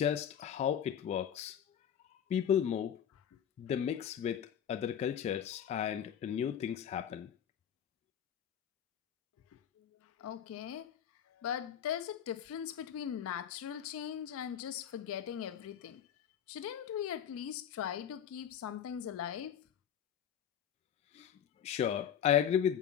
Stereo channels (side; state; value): right; quieter; 9.0 dB